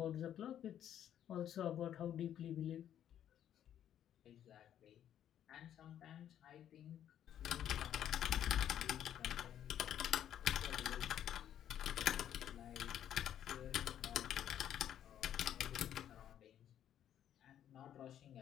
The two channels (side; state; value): right; quieter; 10.5 dB